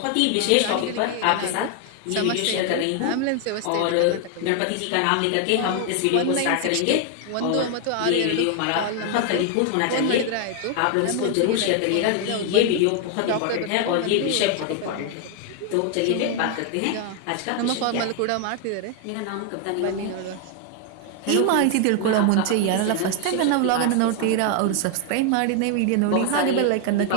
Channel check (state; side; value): different; both; correlation 0.00